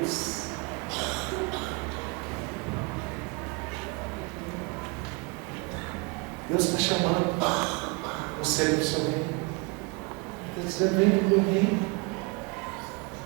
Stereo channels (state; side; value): quieter; left; 29.0 dB